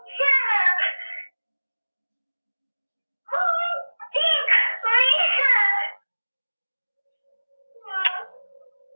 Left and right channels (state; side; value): inverted; both; correlation -1.00